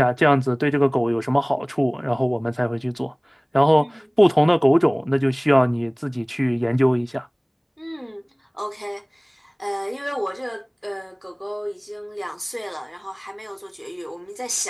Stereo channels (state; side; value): identical; both; correlation 1.00